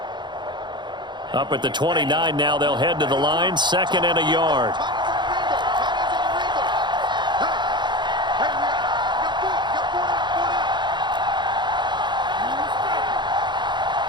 Up at the 29 now, they'll head to the line, 2nd and a yard.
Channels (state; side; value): late; left; 0.22 ms